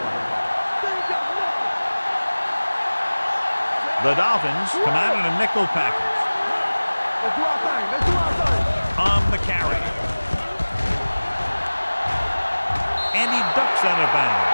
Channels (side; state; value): both; inverted; correlation -1.00